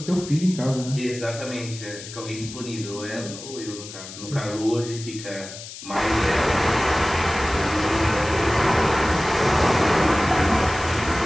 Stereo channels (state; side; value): noise; left; hiss, 13 dB below the sound